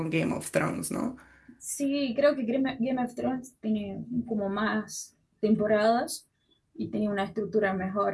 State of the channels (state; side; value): identical; both; correlation 1.00